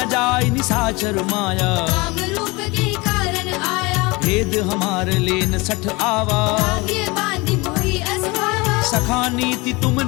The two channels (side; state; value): right; quieter; 24.6 dB